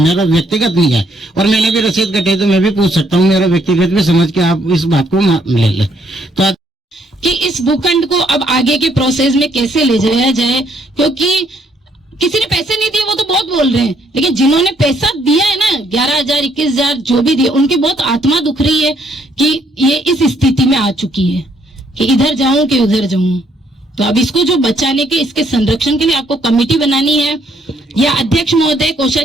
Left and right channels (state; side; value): normal; both; correlation 0.69